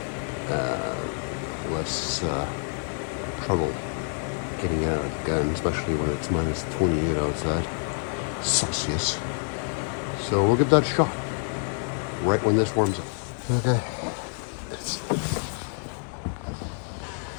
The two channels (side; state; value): right; silent; 57 dB below the other